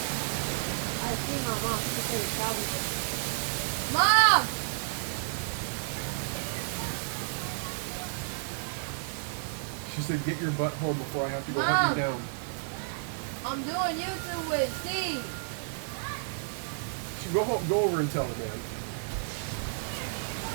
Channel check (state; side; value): silent; left; digital silence